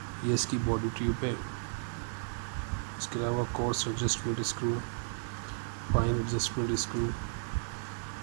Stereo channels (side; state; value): left; silent; 55 dB below the other